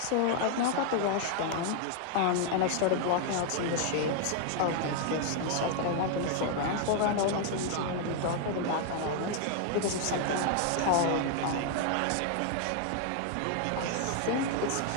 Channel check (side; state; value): both; different; correlation 0.00